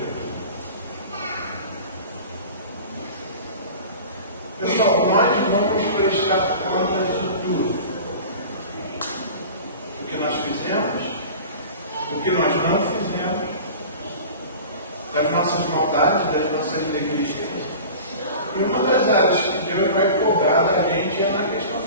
Pessoal, nós vamos prestar conta de tudo. O que nós fizemos, o que nós não fizemos, das nossas maldades, das nossas negligências. E uma das áreas que Deus vai cobrar da gente é na questão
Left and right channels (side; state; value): both; inverted; correlation -0.37